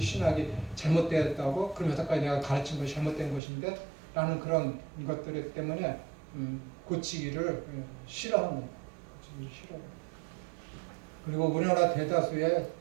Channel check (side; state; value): left; drops out; at 3.4 s